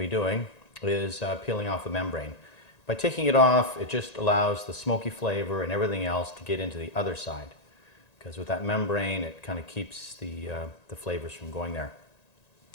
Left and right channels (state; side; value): late; right; 1.9 ms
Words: doing is peeling off the membrane. By taking it off, it just allows the smoky flavor and everything else to get into the other side. Because with that membrane, it kind of keeps the flavors from going there.